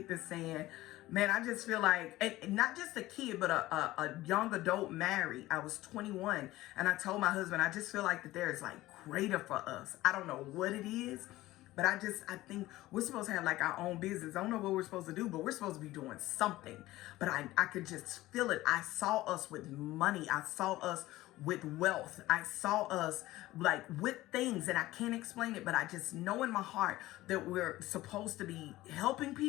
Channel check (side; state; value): right; quieter; 17.1 dB